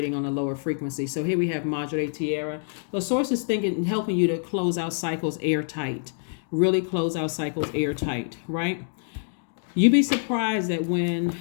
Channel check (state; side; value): silent; right; digital silence